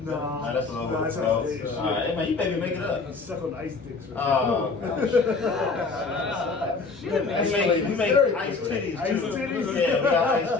No. Nah, that's a little no, bit. that's All like right, man, you baby make it up. Suck on ice dicks. Or Oh, Shit, we man. make ice titties Ice too. titties? Yeah, we got ice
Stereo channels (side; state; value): right; quieter; 4.3 dB